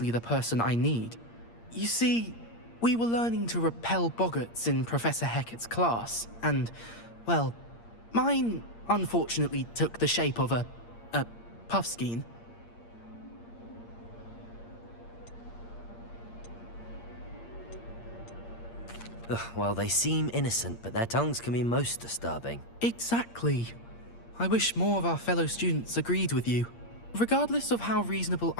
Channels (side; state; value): right; late; 8.6 ms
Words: the person I need. You see, we were learning to repel boggarts in Professor Hecat's class, and, well, mine unfortunately took the shape of a puffskein. Ugh, well, they seem innocent, but their tongues can be most disturbing. Exactly. I wish more of our fellow students agreed with you. Regardless of how reasonable